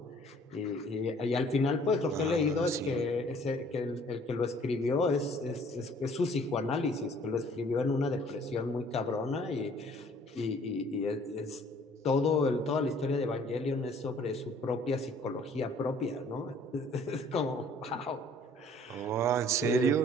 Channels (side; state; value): both; normal; correlation 0.56